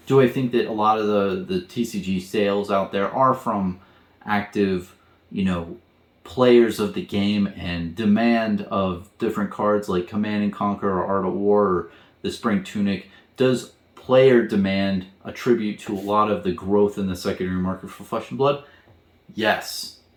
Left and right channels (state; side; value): identical; both; correlation 1.00